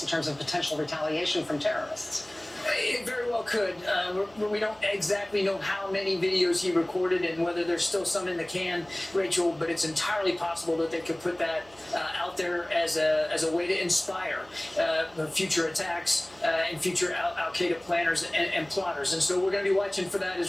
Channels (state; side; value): noise; right; hum, 27 dB below the sound